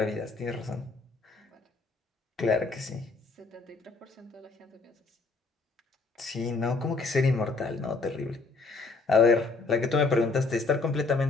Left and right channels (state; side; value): quieter; right; 3.8 dB